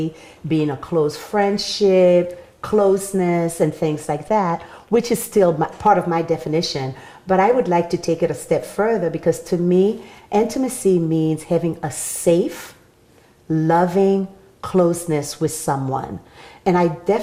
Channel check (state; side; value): identical; both; correlation 1.00